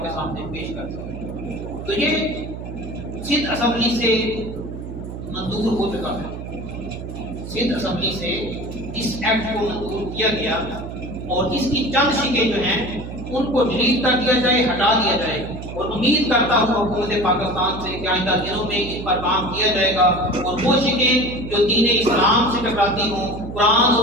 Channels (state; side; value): noise; right; hum, 9 dB below the sound